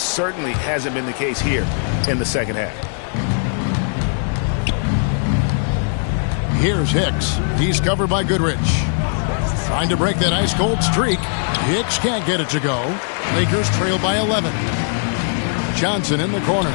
hasn't been the case here in the second half. Here's Hicks. He's covered by Goodrich. Trying to break that ice-cold streak. Hicks can't get it to go. Lakers trail by 11. Johnson in the corner.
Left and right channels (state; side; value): silent; right; digital silence